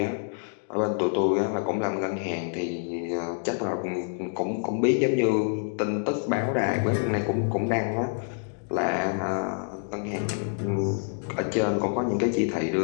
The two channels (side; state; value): right; silent; 60 dB below the other